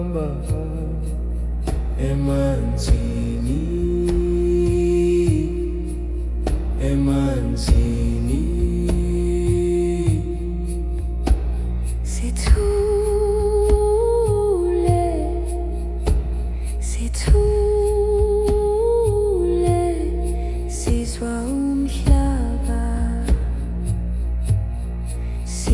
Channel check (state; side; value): identical; both; correlation 1.00